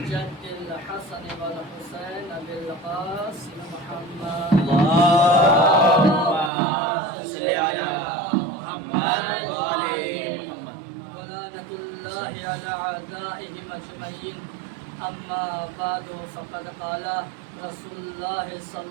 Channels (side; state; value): left; drops out; at 6.5 s